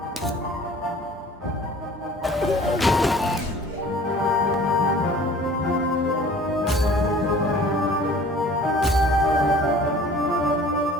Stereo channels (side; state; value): both; normal; correlation 0.48